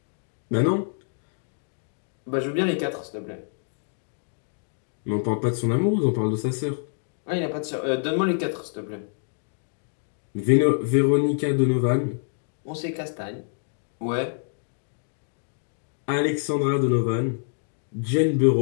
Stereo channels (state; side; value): silent; right; digital silence